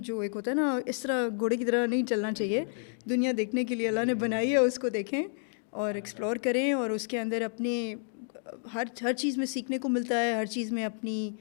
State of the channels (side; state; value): right; silent; 58 dB below the other